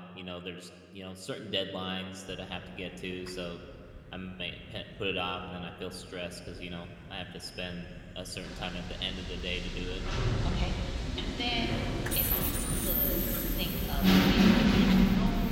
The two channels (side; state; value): both; identical; correlation 1.00